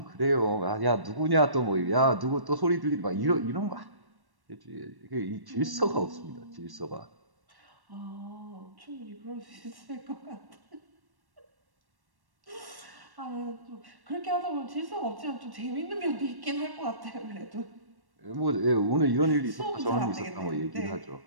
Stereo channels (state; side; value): late; left; 1.1 ms